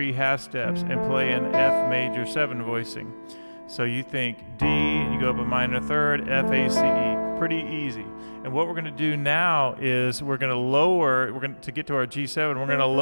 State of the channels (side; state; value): both; inverted; correlation -1.00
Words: half steps, and play an F major 7 voicing. So you think D, and you go up a minor third, F, A, C, E. Pretty easy. And what we're going to do now is we're going to lower, to get to our G7, we're going to